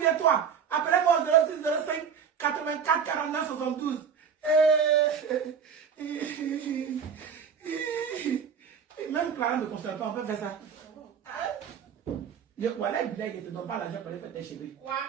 toi. Appelez-moi au 06 05 84 49 72. Même Clara ne console pas, on peut faire ça. Voilà, il ne te donne pas l'argent pour aller faire tes cheveux. Quoi?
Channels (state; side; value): quieter; left; 6.9 dB